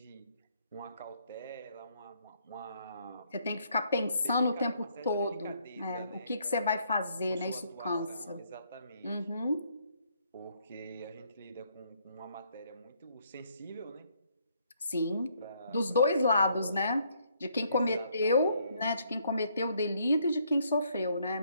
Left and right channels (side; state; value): both; inverted; correlation -0.69